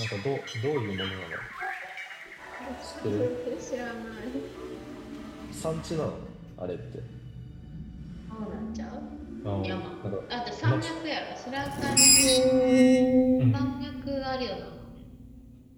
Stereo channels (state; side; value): identical; both; correlation 1.00